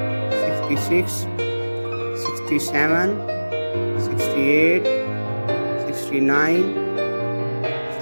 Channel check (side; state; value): both; inverted; correlation -1.00